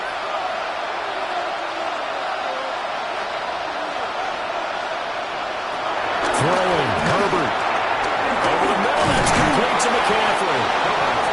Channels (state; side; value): identical; both; correlation 1.00